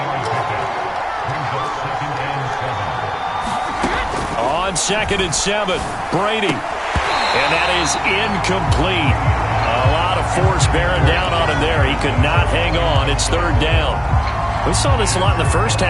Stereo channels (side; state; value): both; identical; correlation 1.00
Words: On 2nd and 7, Brady. And that is incomplete. A lot of force bearing down on him there. He could not hang on. It's 3rd down. We saw this a lot in the first